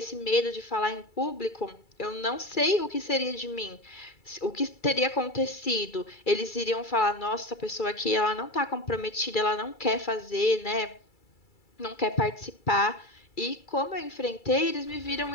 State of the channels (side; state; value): right; late; 2.3 ms